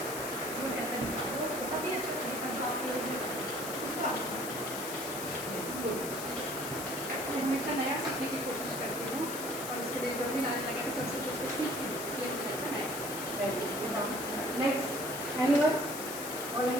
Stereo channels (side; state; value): left; noise; hiss, 7 dB below the sound